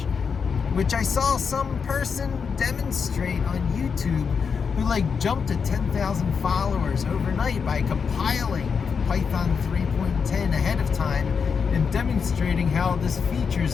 which I saw some person demonstrate on YouTube who like jumped to 10,000 followers overnight by compiling Python 3.10 ahead of time and demonstrating how this feature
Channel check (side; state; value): right; quieter; 6.0 dB